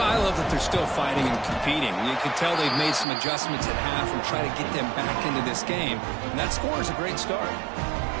I love that they're still fighting and competing. You can tell they've made some adjustments at half and try to get them back into this game. And that score is a great start.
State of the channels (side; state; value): left; drops out; at 3.1 s